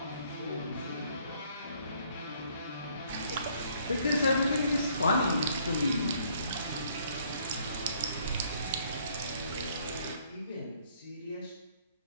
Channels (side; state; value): both; inverted; correlation -0.64